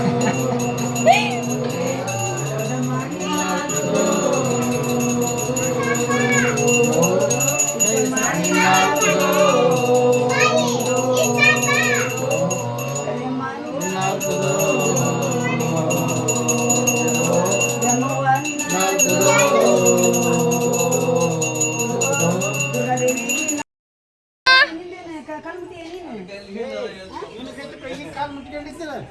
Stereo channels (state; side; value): identical; both; correlation 1.00